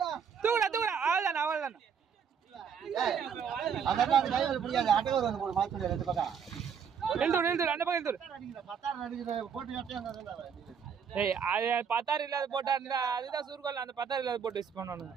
தூக்குடா தூக்குடா அவ்வளோதானே அவ்வளோதானே அதெல்லாம் அந்த கை வலி பிடிக்காது அட்டைவர் வந்து போடு மாத்தி ரெண்டு பக்கம் எழுதுடு அந்த பக்கம் எழுதுடு பத்தாயிரம் அடிக்கிற போட்டு கட்டியா ஏய் அது 10,000 இல்லாத போட்டா இருந்தா அதுதான் சுருக்கல் அந்த 10,000 இல்லாத போட்டு யூஸ் பண்ணணும்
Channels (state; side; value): quieter; left; 7.1 dB